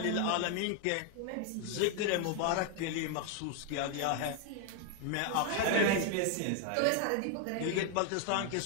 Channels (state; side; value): different; both; correlation 0.01